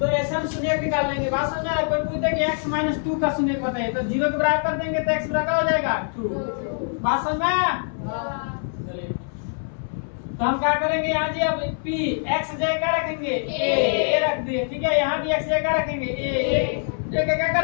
ऐसे हम शून्य निकाल लेंगे। बात समझ रहा है? कोई पूछे कि x माइनस 2 का शून्य बताइए, तो 0 के बराबर कर देंगे तो x बराबर हो जाएगा 2। बात समझ में? तो हम क्या करेंगे यहाँ जी, अब p x जगह क्या रखेंगे, a रख दिए। ठीक है, यहाँ भी x जगह रखेंगे a क्या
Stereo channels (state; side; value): silent; right; 63 dB below the other